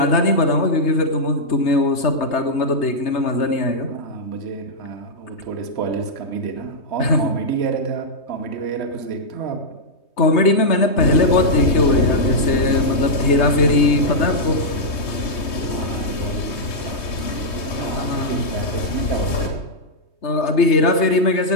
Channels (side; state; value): right; late; 3.2 ms